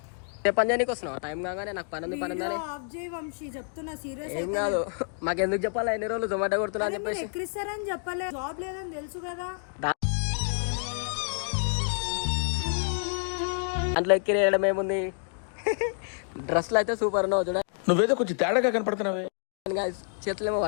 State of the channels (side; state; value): right; silent; 59 dB below the other